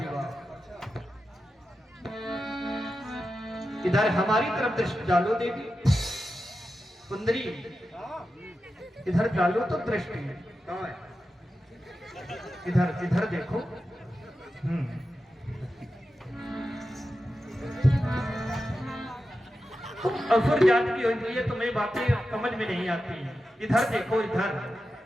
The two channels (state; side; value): normal; both; correlation 0.91